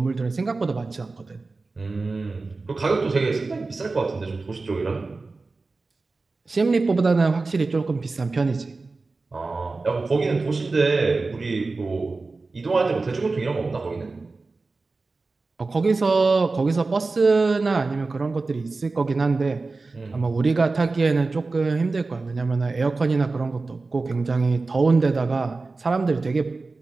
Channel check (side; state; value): left; quieter; 3.7 dB